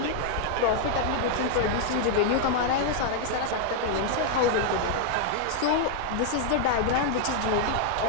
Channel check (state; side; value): different; both; correlation 0.00